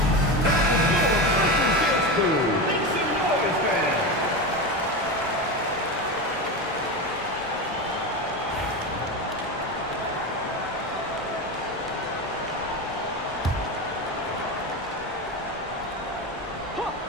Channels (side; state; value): both; normal; correlation 0.20